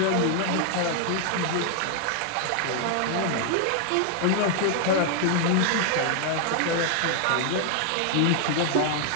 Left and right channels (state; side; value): different; both; correlation 0.00